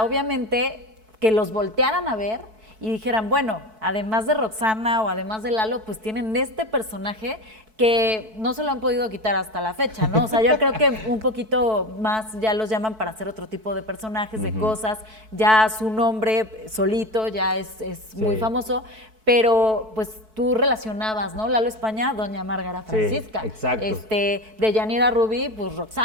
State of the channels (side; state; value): left; late; 4.6 ms